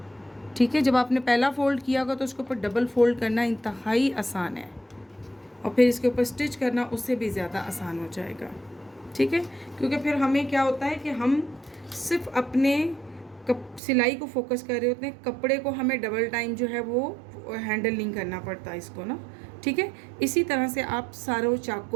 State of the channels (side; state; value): left; drops out; at 13.8 s